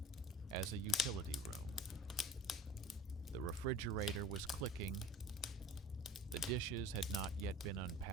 as a utility room. The refrigerator was clicking. The dishes had not yet been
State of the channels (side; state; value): both; normal; correlation 0.41